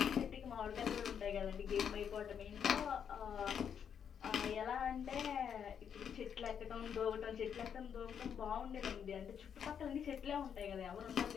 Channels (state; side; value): quieter; right; 7.9 dB